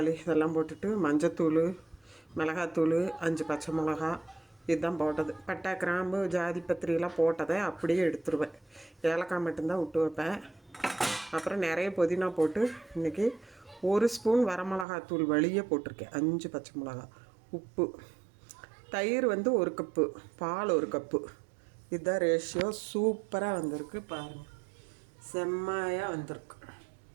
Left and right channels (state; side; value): drops out; left; at 14.9 s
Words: இதெல்லாம் போட்டுட்டு மஞ்சத்தூள், மிளகாத்தூள், 5 பச்சை மிளகா இதுதான் போட்டது. பட்டை, கிராம்பு, ஜாதி பத்திரியெல்லாம் போட்டதை அப்படியே எடுத்துருவேன். ஏலக்காய் மட்டும்தான் விட்டு வைப்பேன். அப்புறம் நிறைய புதினா போட்டு இன்றைக்கி 1 ஸ்பூன் வரமிளகாத்தூள் வழியே போட்டிருக்கேன். 5 பச்சை மிளகா, உப்பு, தயிர் 1 கப்பு, பால் 1 கப்பு. இதுதான் ரேஷியோ. சூப்பராக வந்திருக்கு பாருங்கள், செம்மையாக வந்திருக்கு.